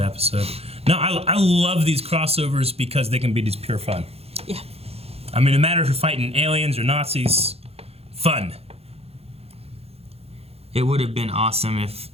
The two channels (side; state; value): left; late; 0.29 ms